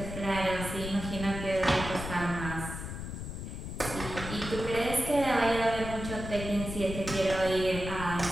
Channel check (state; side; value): noise; left; rumble, 7 dB below the sound